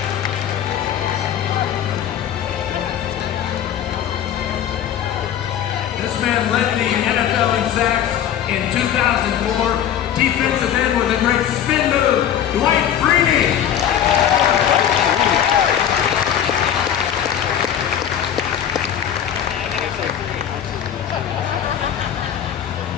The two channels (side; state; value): right; quieter; 9.9 dB